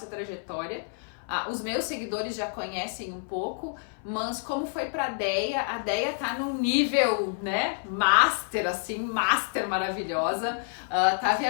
trajetória. Os meus seguidores já conhecem um pouco, mas como foi pra Deia? A Deia tá num nível, né, master, assim, master maravilhosa, tá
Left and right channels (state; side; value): silent; right; 56 dB below the other